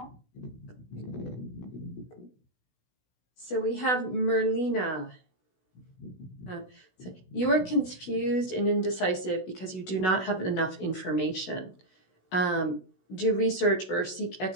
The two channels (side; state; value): right; late; 16 ms